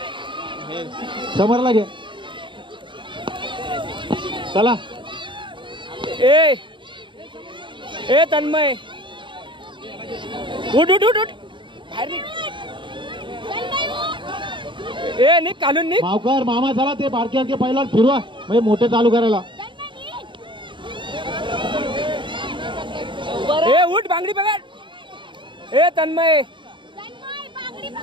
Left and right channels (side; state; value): left; late; 0.23 ms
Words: समरला घे. चला ए ए तन्मय उठ उठ उठ उठ बाहेर निघ. ए निघ काढून निघ. मावकर मामा चला ते बारक्यांचे पहिला फिरवा म्हणजे मोठे चालू करायला. ए उठ बांगडी पकड. ए तन्मय